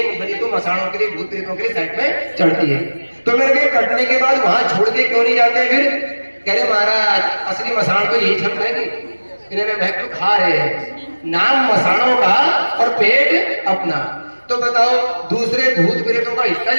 बलि तो मसाणों के लिए, भूत प्रेतों के लिए साइड में चढ़ती है। तो मेरे के कटने के बाद वहां छोड़ के क्यों नहीं जाते? फिर कह रहे महाराज असली मसाण तो यही छट है कि इन्हें भक्त खा रहे हैं, नाम मसाणों का और पेट अपना। तो बताओ, दूसरे भूत प्रेतों का हिस्सा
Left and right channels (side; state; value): both; inverted; correlation -1.00